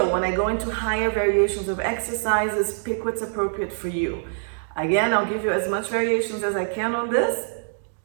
when I go into higher variations of exercises, pick what's appropriate for you. Again, I'll give you as much variations as I can on this,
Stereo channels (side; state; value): left; silent; digital silence